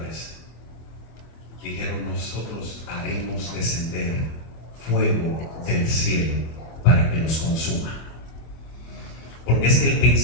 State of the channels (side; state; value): right; late; 24 ms